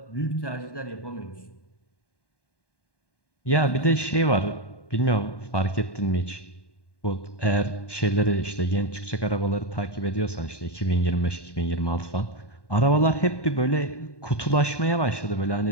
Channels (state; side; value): late; right; 1.2 ms